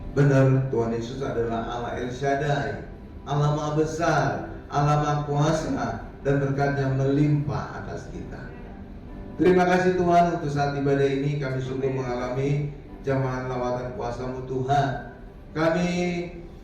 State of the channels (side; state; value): both; identical; correlation 1.00